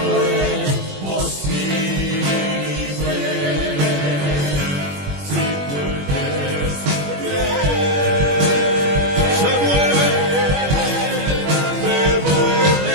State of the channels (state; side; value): late; left; 21 ms